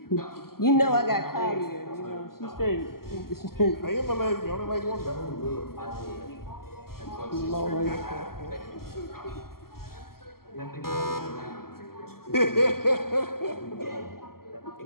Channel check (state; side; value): late; right; 0.93 ms